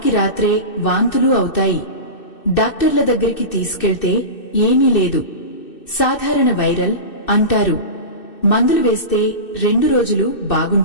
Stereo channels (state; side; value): late; right; 2.6 ms